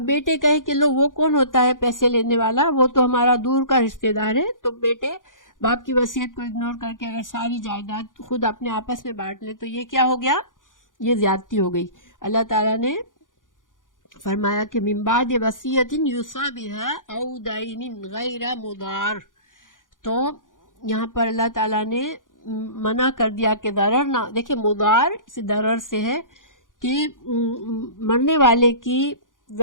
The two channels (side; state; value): right; late; 0.89 ms